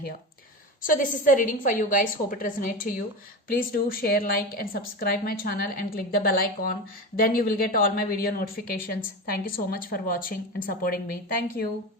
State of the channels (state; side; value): normal; both; correlation 0.23